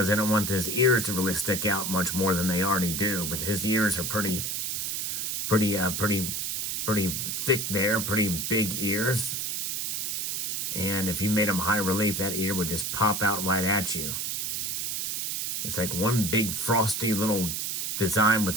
they don't want his ears to really stick out much more than they already do. But his ears are pretty thick there, pretty big ears. And if you made them high relief, that ear would just pop out right at you. It's like one big frosty little design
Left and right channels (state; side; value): noise; right; hiss, 1 dB below the sound